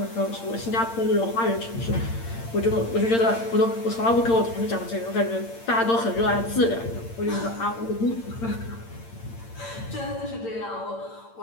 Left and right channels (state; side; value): late; right; 8.8 ms